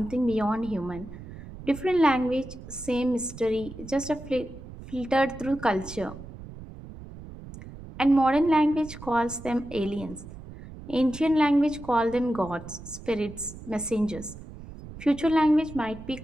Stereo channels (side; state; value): right; noise; rumble, 14 dB below the sound